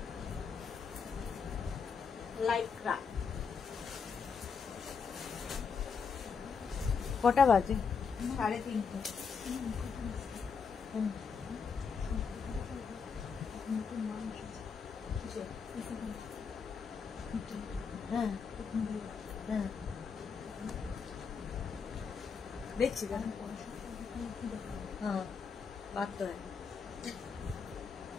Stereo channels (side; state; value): right; quieter; 5.7 dB